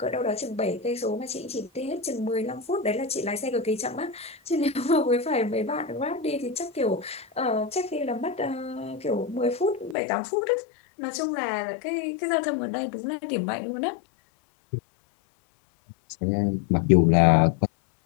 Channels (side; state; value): right; drops out; at 10.0 s